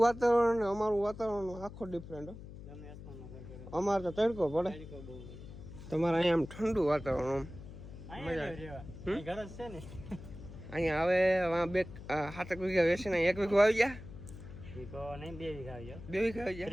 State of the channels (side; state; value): left; noise; hum, 14 dB below the sound